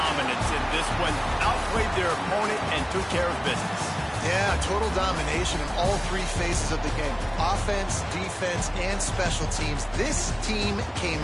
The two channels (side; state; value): both; identical; correlation 1.00